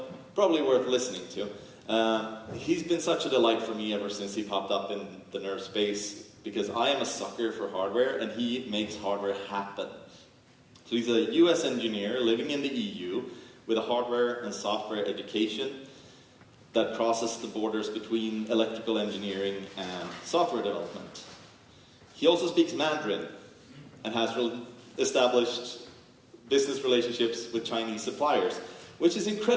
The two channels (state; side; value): identical; both; correlation 1.00